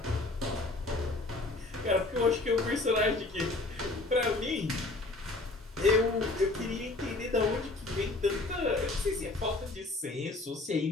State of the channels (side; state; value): right; quieter; 3.1 dB